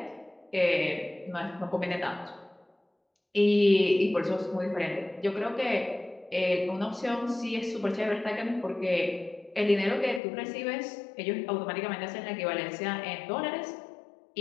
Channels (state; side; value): drops out; right; at 10.2 s